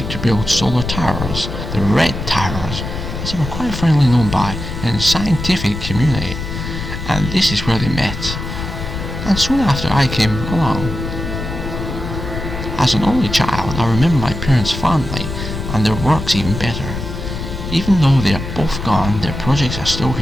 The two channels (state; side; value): noise; left; rumble, 6 dB below the sound